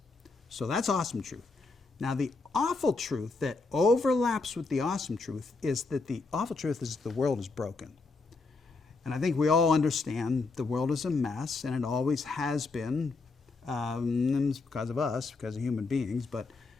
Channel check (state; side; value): quieter; right; 3.8 dB